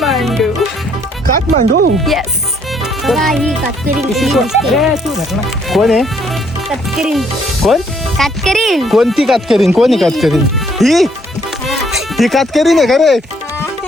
Kathmandu. Yes. ही कातकरी कोण आहे? कातकरी कोण? कातकरी कोणती कातकरीन? कोणी कातकरीन? ही कातकरीन आहे का रे?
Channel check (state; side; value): normal; both; correlation 0.67